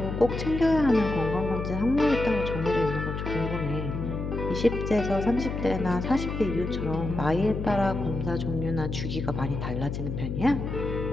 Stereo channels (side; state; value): left; noise; hum, 4 dB below the sound